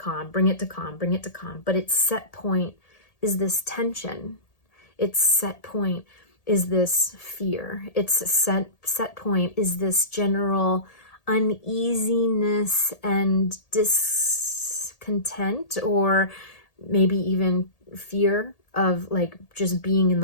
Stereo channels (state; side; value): late; right; 1.8 ms